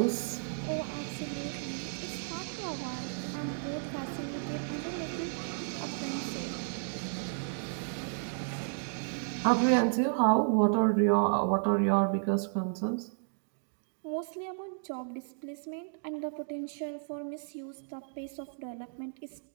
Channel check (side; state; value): left; silent; digital silence